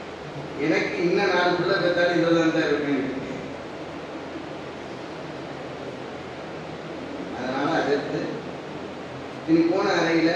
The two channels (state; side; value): identical; both; correlation 1.00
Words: எனக்கு இன்னும் 4 பிள்ளை பெற்றாலும் இதில் தான் இருக்கேன். அதனால அதற்கு இனி போன அறையில்